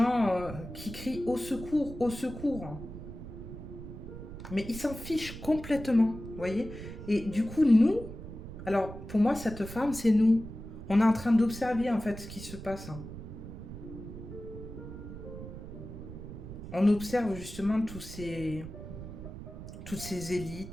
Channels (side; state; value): right; noise; rumble, 11 dB below the sound